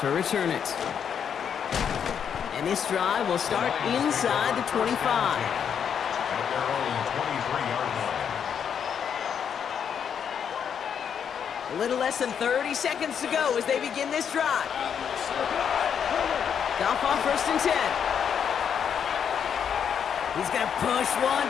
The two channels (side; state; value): right; quieter; 7.8 dB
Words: return it. And this drive will start inside the 25. At their own 23-yard line. A little less than 30 seconds to go as they begin this drive. Goff on 1st and 10. He's going to push one